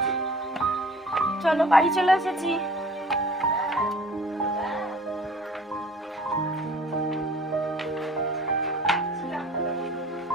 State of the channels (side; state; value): both; normal; correlation 0.49